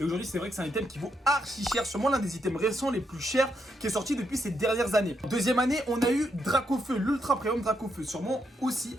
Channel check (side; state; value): both; normal; correlation 0.79